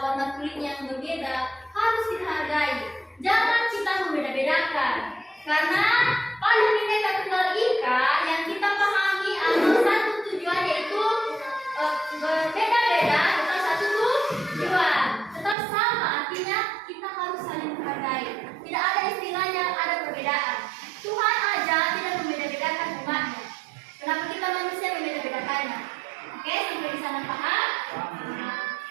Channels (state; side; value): drops out; left; at 15.6 s